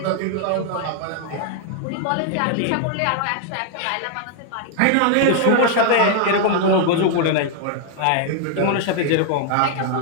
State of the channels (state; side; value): different; both; correlation 0.00